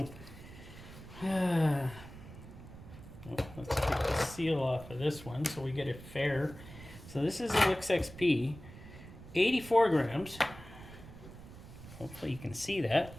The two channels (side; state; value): right; noise; rumble, 16 dB below the sound